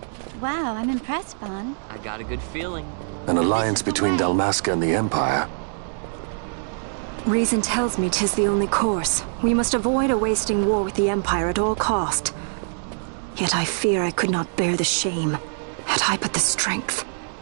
Wow, I'm impressed, Vaughn. I got a good feeling. An alliance between Dalmasca and the Empire. Reason tells me 'tis the only course. We must avoid a wasting war with the Empire at all cost. Yet I fear I could not bear the shame, had I but the strength.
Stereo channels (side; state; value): left; silent; digital silence